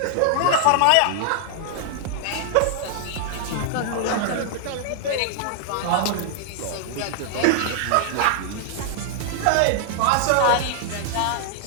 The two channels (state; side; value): different; both; correlation 0.00